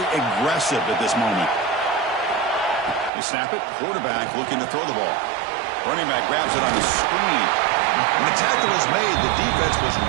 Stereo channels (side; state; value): left; drops out; at 3.1 s